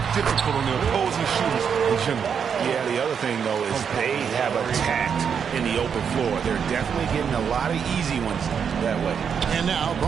difficult on the opposing shooters in general. Yeah, the other thing, though, is they have attacked in the open floor. They're definitely getting a lot of easy ones that way. And now,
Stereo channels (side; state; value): left; quieter; 7.1 dB